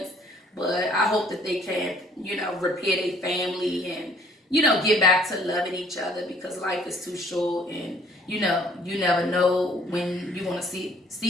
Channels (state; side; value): normal; both; correlation 0.59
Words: But I hope that they can, you know, repair their family and, you know, get back to loving each other, because life is too short, and, you know, you never know when you want to